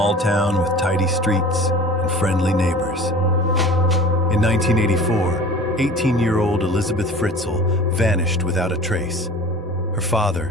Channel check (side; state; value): both; normal; correlation 0.41